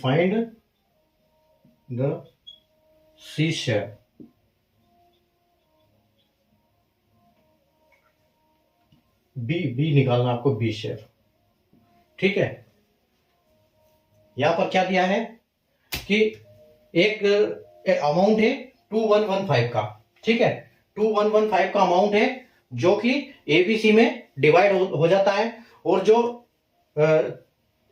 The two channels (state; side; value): identical; both; correlation 1.00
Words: the C share. B निकालना आपको, B share. ठीक है, यहां पर क्या दिया है कि एक अमाउंट है 2115 का। ठीक है, 2115 का अमाउंट है जो कि एबीसी में डिवाइड हो जाता है, और जो